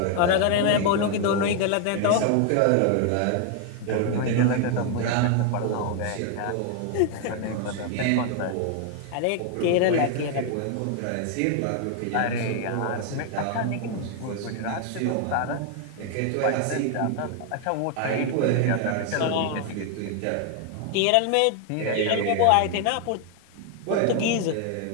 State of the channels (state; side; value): different; both; correlation 0.00